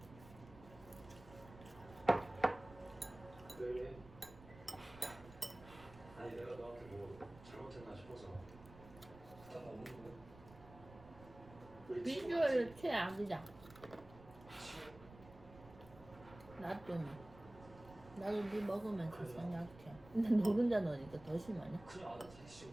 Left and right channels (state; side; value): noise; right; rumble, 19 dB below the sound